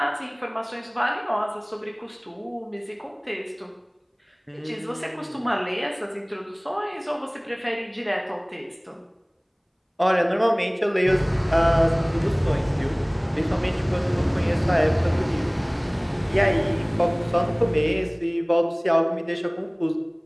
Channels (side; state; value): both; identical; correlation 1.00